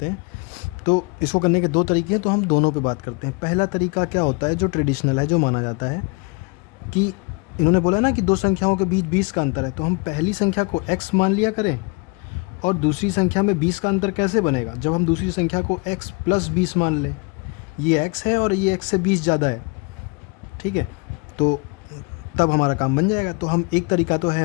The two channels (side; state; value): right; quieter; 29.3 dB